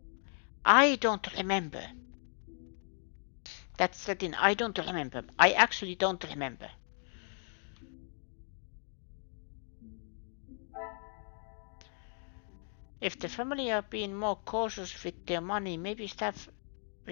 I don't remember. That's the thing, I don't remember. I actually don't remember. If the family are being more cautious with their money, maybe staff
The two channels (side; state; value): right; silent; 54 dB below the other